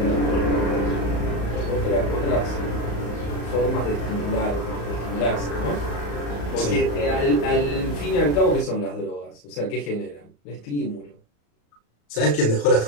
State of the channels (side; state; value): right; late; 35 ms